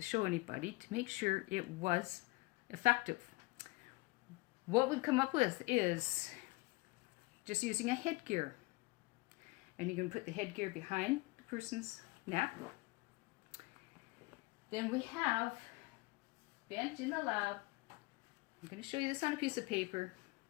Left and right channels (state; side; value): quieter; right; 23.7 dB